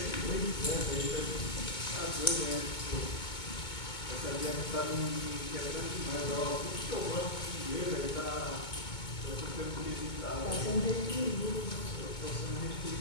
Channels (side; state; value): right; late; 2.2 ms